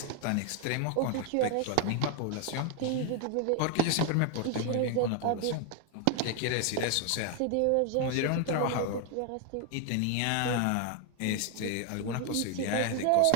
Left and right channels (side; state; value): both; different; correlation 0.01